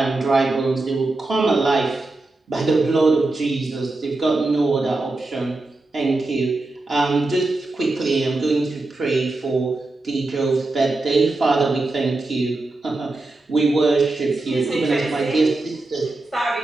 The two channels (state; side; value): quieter; left; 3.1 dB